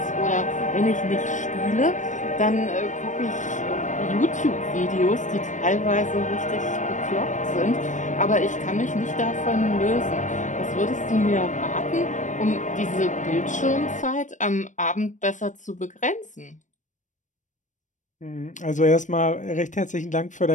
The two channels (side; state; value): right; late; 0.36 ms